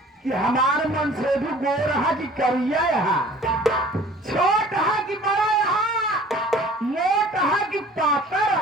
कि हमारे मन से भी गोर है कि करिया यहाँ, छोट है कि बड़ा यहाँ, मोट है कि पातर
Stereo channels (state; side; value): normal; both; correlation 0.49